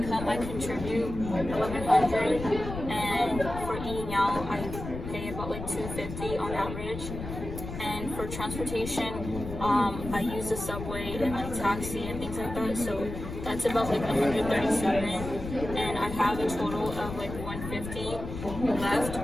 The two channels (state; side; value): noise; left; rumble, 8 dB below the sound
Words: I contribute $1,100, and for eating out, I pay about like $250 on average. And for transportation, I use the subway and like taxi and things like that. So that's about like $137, and I have a total of like $150 left.